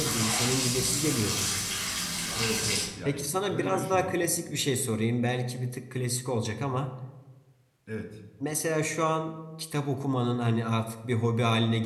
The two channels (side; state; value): both; identical; correlation 1.00